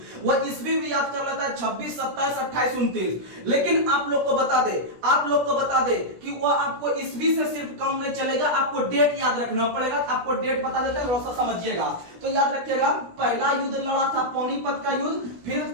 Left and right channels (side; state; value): left; late; 17 ms